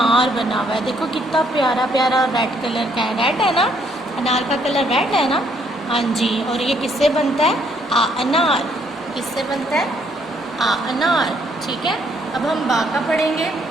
बना हुआ है। देखो कितना प्यारा प्यारा रेड कलर का है। रेड है ना, अनार का कलर रेड है ना। हाँ जी, और ये किससे बनता है? आ अनार किससे बनता है? आ अनार। ठीक है, अब हम बा का पढ़ेंगे।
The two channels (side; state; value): both; normal; correlation 0.68